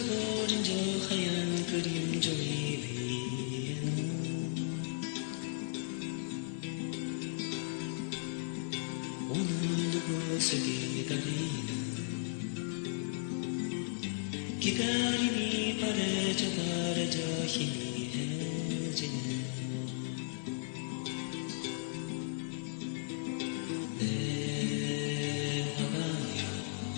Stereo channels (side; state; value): right; silent; 54 dB below the other